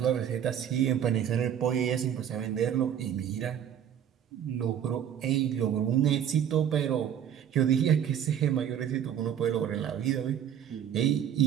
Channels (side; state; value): left; quieter; 9.5 dB